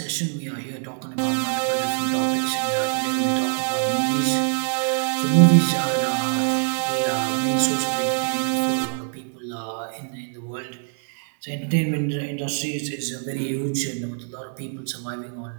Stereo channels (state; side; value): silent; left; digital silence